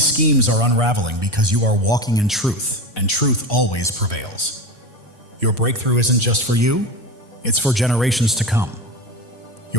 schemes are unraveling because you are walking in truth, and truth always prevails. Your breakthrough isn't just for you, it's for generations to come.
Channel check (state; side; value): normal; both; correlation 0.25